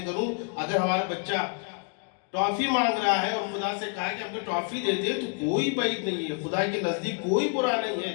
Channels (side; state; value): right; quieter; 38.8 dB